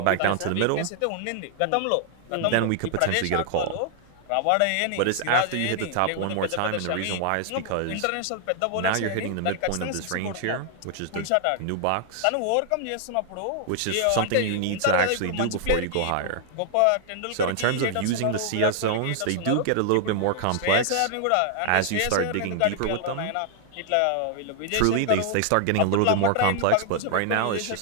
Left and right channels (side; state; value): both; different; correlation 0.00